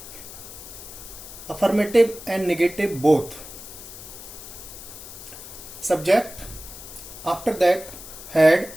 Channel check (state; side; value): noise; left; hiss, 14 dB below the sound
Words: affirmative and negative both. Subject, after that had,